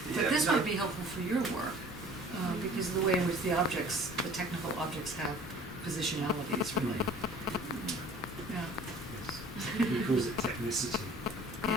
But this no. might be helpful for your work, because of the way in which the technical objects have positionalities, really. Yeah, He calls it technicity.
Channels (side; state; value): both; normal; correlation 0.49